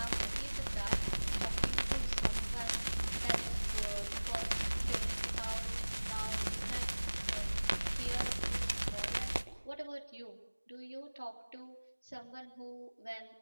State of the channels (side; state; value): both; inverted; correlation -1.00